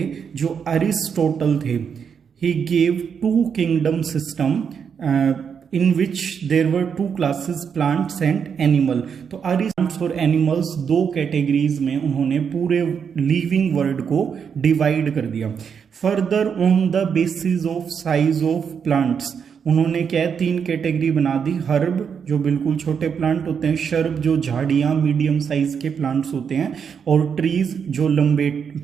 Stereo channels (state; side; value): quieter; left; 6.9 dB